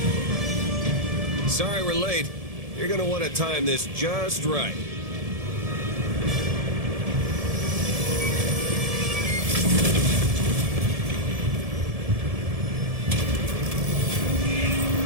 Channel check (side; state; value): left; late; 1.7 ms